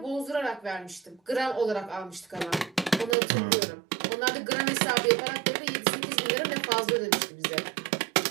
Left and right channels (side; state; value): left; drops out; at 3.2 s